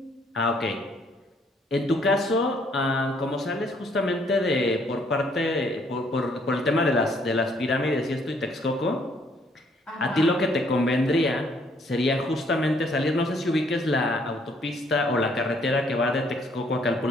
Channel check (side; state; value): both; normal; correlation 0.66